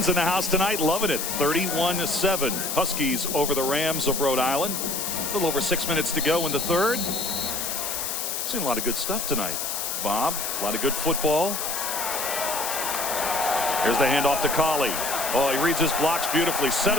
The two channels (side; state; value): left; noise; hiss, 2 dB below the sound